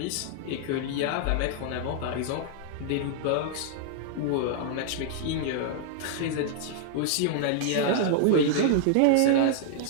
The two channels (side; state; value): both; different; correlation -0.01